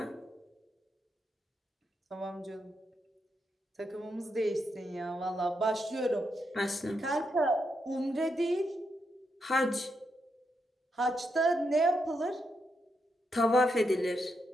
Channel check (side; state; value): both; normal; correlation 0.82